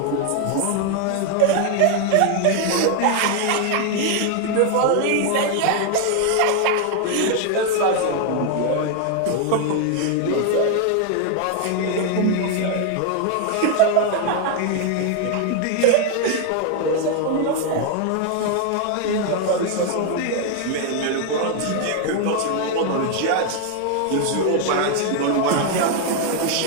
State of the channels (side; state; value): both; different; correlation 0.01